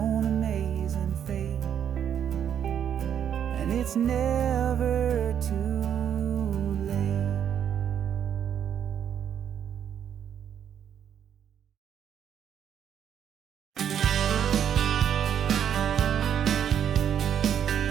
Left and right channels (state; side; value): quieter; left; 9.0 dB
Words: own amazing fate. And it's never too late.